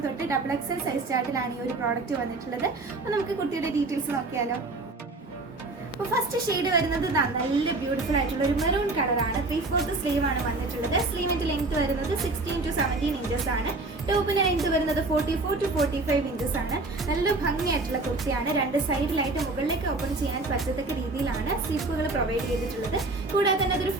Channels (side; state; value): left; quieter; 3.2 dB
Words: തൊട്ട് XXL സൈസ് ചാർട്ടിലാണ് ഈ ഒരു പ്രോഡക്റ്റ് വന്നിട്ടുള്ളത്. അപ്പോൾ നമുക്ക് കുർത്തിയുടെ ഡീറ്റെയിൽസ് നോക്കിയാലോ. അപ്പോൾ ഫസ്റ്റ് ഷെയ്ഡ് വരുന്നത് നല്ല ബ്യൂട്ടിഫുൾ ആയിട്ടുള്ള ഒരു മെറൂൺ കളറാണ്. 3/4 സ്ലീവ് ആണ് വന്നിട്ടുള്ളത്. സ്ലീവിന്റെ ലെങ്ത് വരുന്നത് 16 to 17 ഇഞ്ചസ് ആണ്. ടോപ്പിന്റെ ലെങ്ത് വരുന്നത് 44 to 45 ഇഞ്ചസ് ആണ്. നല്ല ഭംഗിയായിട്ടുള്ള കുർത്തിയാണ്. 2 സൈഡിലായിട്ട് മുകളിലേക്ക് ഓപ്പൺ ചെയ്യാൻ പറ്റത്തക്ക രീതിയിലാണ് സ്ലിപ്പുകൾ പ്രൊവൈഡ് ചെയ്തിട്ടുള്ളത്. കൂടാതെ തന്നെ അതൊരു